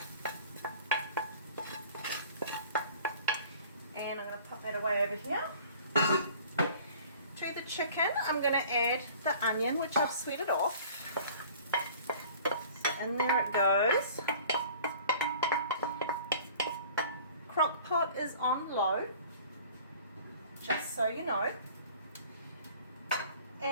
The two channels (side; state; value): both; inverted; correlation -0.48